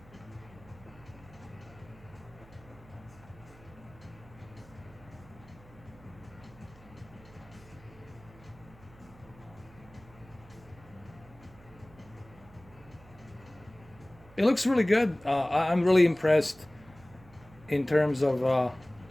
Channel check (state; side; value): noise; right; hum, 22 dB below the sound